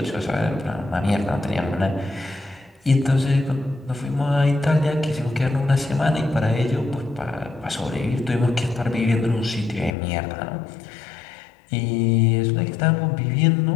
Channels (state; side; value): drops out; right; at 10.0 s